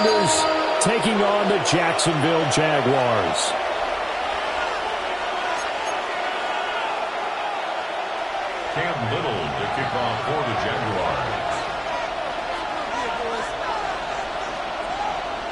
taking on the Jacksonville Jaguars. Cam Little to kick off for the Jaguars.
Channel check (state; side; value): identical; both; correlation 1.00